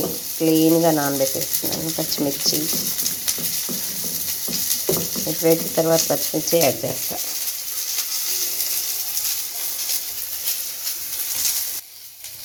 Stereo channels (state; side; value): identical; both; correlation 1.00